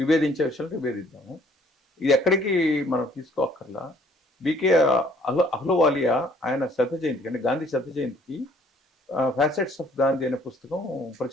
విషయాలు విభేదిద్దాము, ఇది ఎక్కడికి మనం తీసుకోక్కర్లా. బీకే అహ్లువాలియా ఆయన శత జయంతికి అంటే గాంధీ శత జయంతికి ఫ్యాసెట్స్ ఆఫ్ గాంధీ అనే పుస్తకం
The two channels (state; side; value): normal; both; correlation 0.60